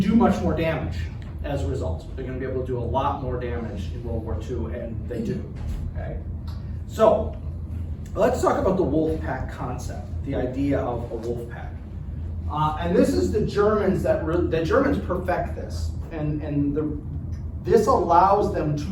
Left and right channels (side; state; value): both; identical; correlation 1.00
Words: much more damage as a result. They're going to be able to do a lot more damage in World War II, and they do, okay? So, let's talk about the wolf pack concept, the idea of a wolf pack. And this is the Germans the Germans perfect this, and this allows them to